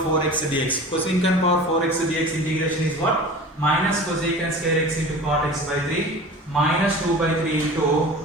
dx. Cosecant power 4x dx integration is what? Minus cosecant square x into cot x by 3 minus 2 by 3 into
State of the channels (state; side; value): normal; both; correlation 0.37